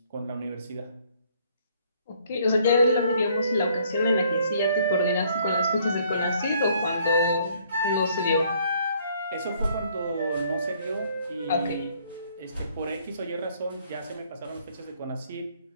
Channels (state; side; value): inverted; both; correlation -0.63